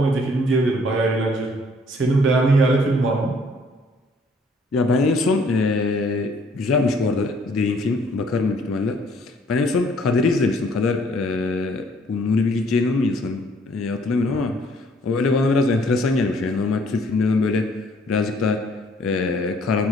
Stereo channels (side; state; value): both; normal; correlation 0.61